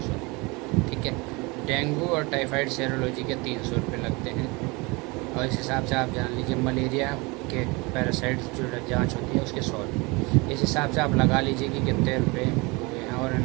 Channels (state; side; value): quieter; left; 26.2 dB